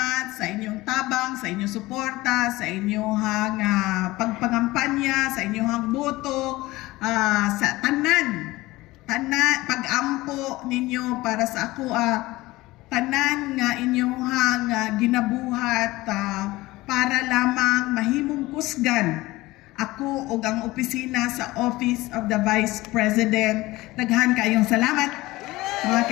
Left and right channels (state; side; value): quieter; right; 19.3 dB